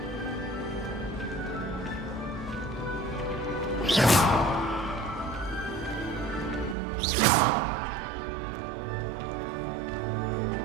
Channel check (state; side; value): drops out; left; at 6.8 s